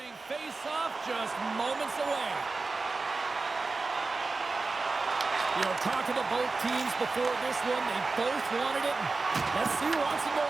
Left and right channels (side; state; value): left; quieter; 3.8 dB